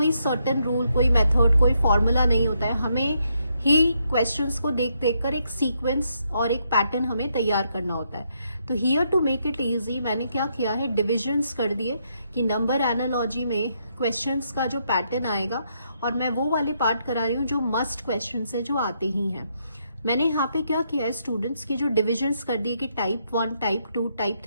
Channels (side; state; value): both; inverted; correlation -0.77